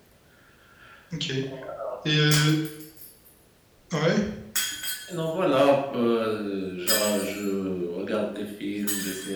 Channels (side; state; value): both; identical; correlation 1.00